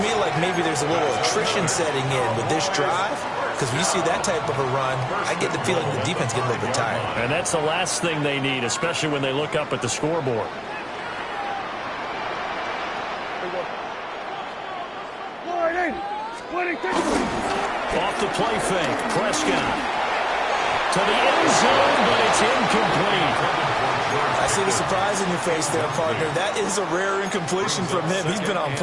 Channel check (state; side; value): identical; both; correlation 1.00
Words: me like maybe there's a little attrition setting in with this drive, because when you see that type of a run, I get the feeling the defense getting a little bit tired. And that's the last thing they need, especially when they look up at the scoreboard. Off the play fake, Prescott to the end zone, but it's incomplete. I see the surprise in your face there, partner. That is a rare incompletion from him. He's been on